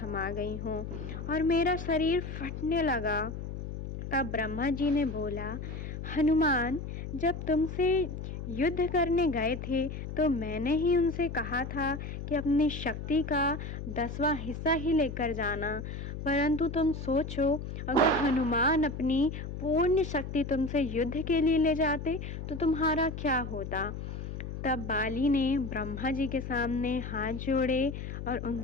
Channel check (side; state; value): left; noise; hum, 7 dB below the sound